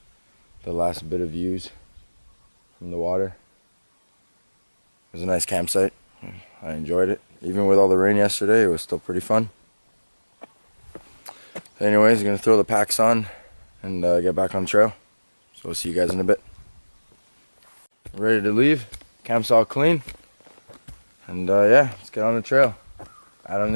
the last bit of views from the water. It was a nice campsite. I enjoyed it. Even with all the rain yesterday, it was still pretty fun. Anyways, I'm gonna throw the packs on and get back on the trail. So we'll see you guys in a bit. Ready to leave. Camp's all clean. And yeah, let's get on the trail. Adam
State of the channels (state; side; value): inverted; both; correlation -1.00